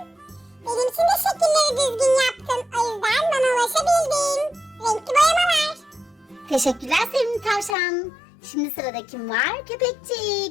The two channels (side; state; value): right; drops out; at 7.8 s